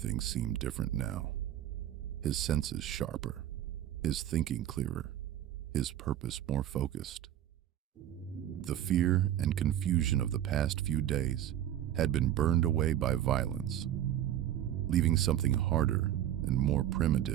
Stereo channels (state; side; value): quieter; left; 11.7 dB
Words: seemed different now. His senses sharper, his thinking clearer, his purpose more focused. The fear and confusion of the past few days had been burned away by violence, leaving something harder and more